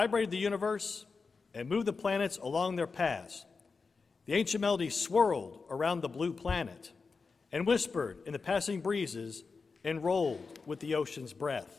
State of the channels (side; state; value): right; quieter; 4.6 dB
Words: the universe and moved the planets along their paths. The ancient melody swirled around the blue planet and whispered in the passing breezes and rolled with the ocean's